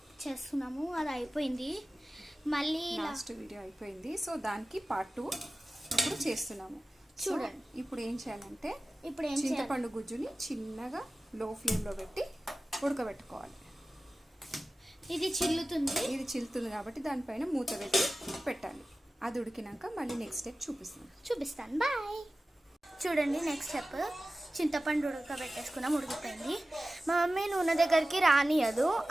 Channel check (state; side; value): normal; both; correlation 0.96